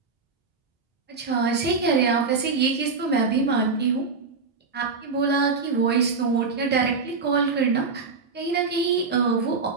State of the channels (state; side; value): quieter; left; 4.5 dB